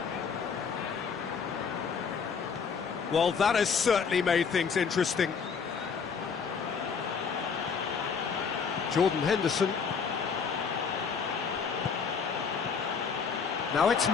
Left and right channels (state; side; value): quieter; right; 6.0 dB